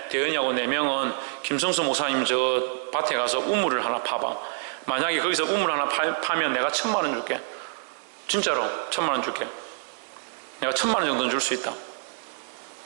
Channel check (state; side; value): silent; left; digital silence